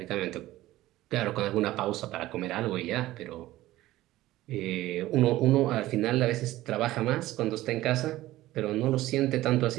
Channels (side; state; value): left; quieter; 16.2 dB